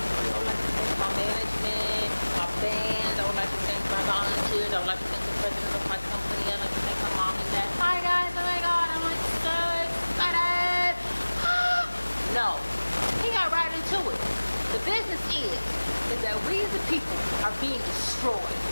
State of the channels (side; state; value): both; inverted; correlation -1.00